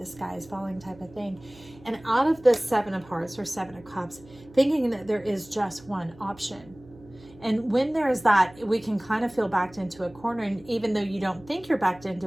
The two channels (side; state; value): right; noise; hum, 23 dB below the sound